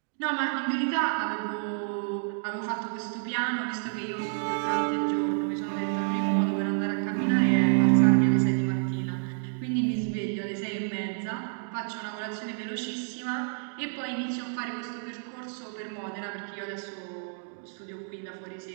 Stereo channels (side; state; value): left; silent; digital silence